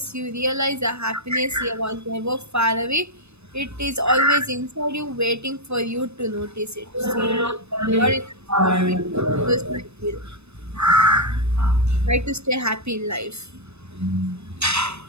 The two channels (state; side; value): late; left; 0.80 ms